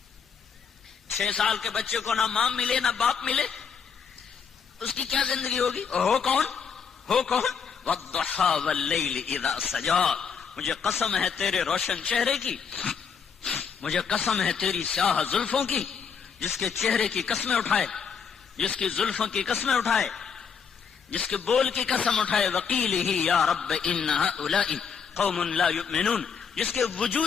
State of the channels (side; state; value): right; quieter; 6.5 dB